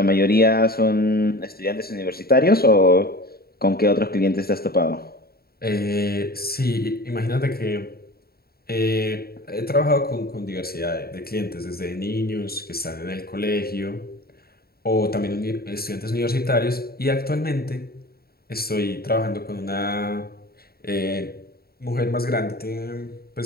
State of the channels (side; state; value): right; late; 0.45 ms